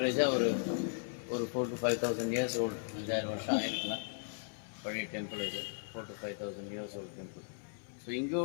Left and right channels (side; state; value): right; silent; 53 dB below the other